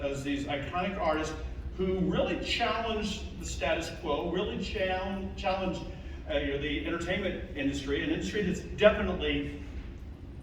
these iconic artists who really challenged the status quo, really challenged the entertainment industry, an industry that's definitely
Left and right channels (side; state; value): both; identical; correlation 1.00